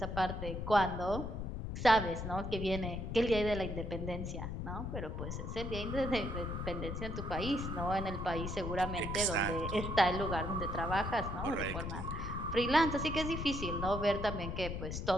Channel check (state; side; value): noise; left; rumble, 5 dB below the sound